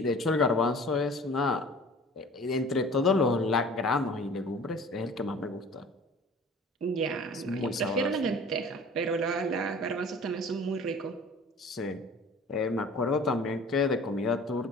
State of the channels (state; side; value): normal; both; correlation 0.45